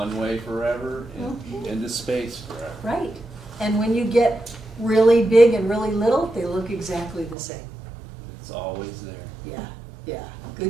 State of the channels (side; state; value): left; drops out; at 7.4 s